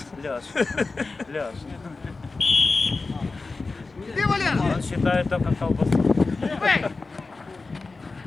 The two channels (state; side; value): quieter; right; 3.8 dB